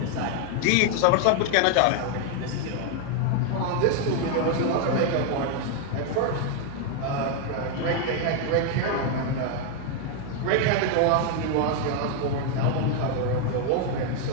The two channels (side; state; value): both; different; correlation 0.01